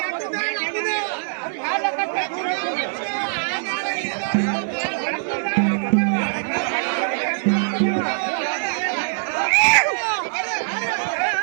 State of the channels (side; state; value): left; silent; digital silence